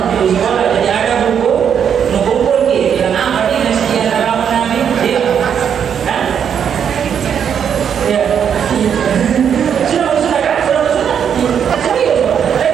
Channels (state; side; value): quieter; left; 8.0 dB